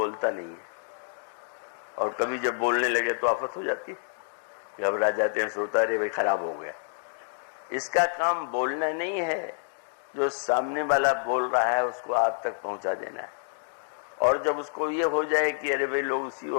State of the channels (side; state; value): right; silent; digital silence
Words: नहीं है। और कभी जब बोलने लगे तो आफत हो जाती है, घबरा जाते हैं, सोता रे भाई खराब हो गया। इसका काम बोलना नहीं है, जो सामने वाला बोल रहा है उसको आप तक पहुंचा देना है। और जब उसको ये हो जाए कि अरे भाई लोग उसी